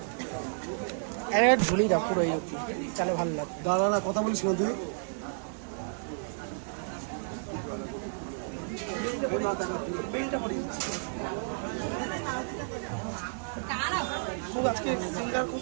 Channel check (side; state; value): left; silent; digital silence